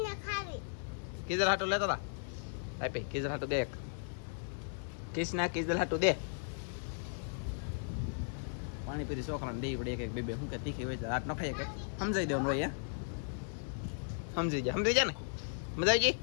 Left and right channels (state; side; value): silent; right; digital silence